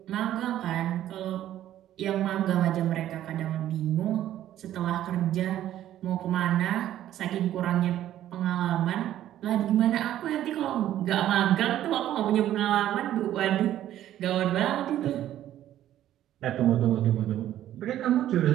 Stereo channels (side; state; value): left; quieter; 12.3 dB